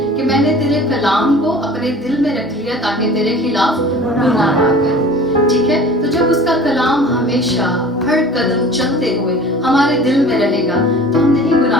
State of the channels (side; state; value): both; normal; correlation 0.43